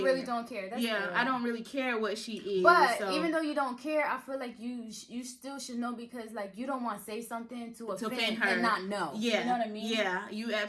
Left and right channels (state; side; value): identical; both; correlation 1.00